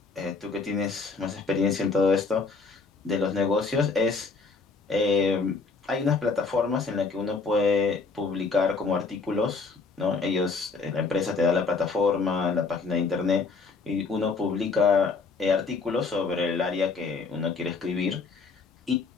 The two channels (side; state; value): right; quieter; 4.4 dB